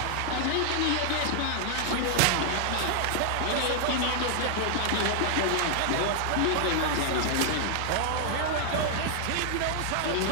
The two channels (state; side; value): different; both; correlation 0.00